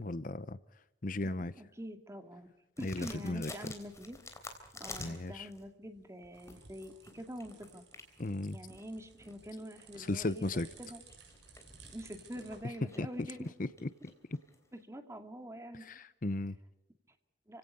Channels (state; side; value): normal; both; correlation 0.69